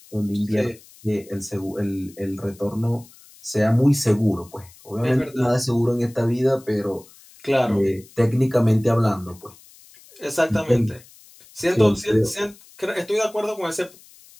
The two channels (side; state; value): left; noise; hiss, 24 dB below the sound